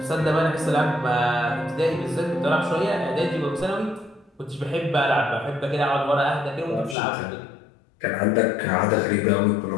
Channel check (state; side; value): drops out; right; at 7.0 s